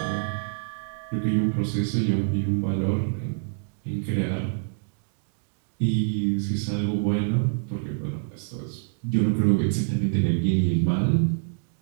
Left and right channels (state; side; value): silent; left; digital silence